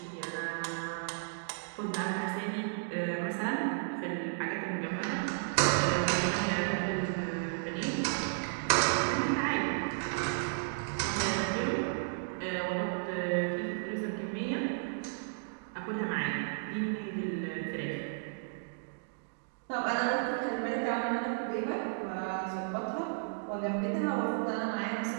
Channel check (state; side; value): silent; left; digital silence